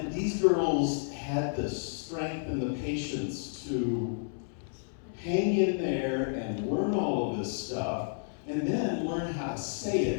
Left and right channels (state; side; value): silent; right; digital silence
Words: these girls had the strength and the patience to hang in there and learn all of this stuff, and then learn how to say